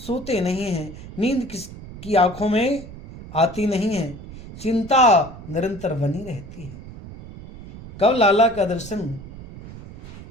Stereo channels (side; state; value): right; noise; rumble, 15 dB below the sound